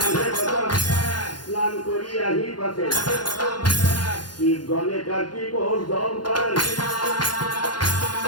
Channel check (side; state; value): right; late; 0.71 ms